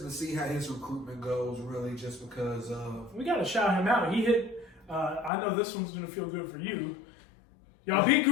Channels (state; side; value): drops out; right; at 5.3 s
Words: to see how his recruitment goes. Really, just because we got to shout him out. He hit. I know this one's going to feel good for you. Y'all beat